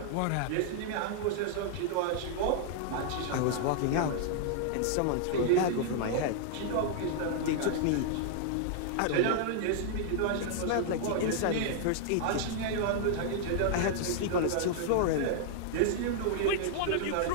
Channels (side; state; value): both; different; correlation -0.01